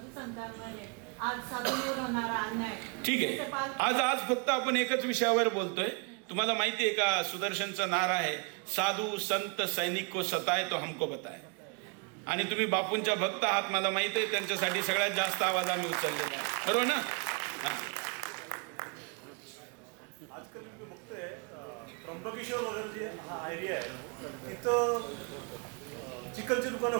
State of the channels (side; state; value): left; quieter; 35.0 dB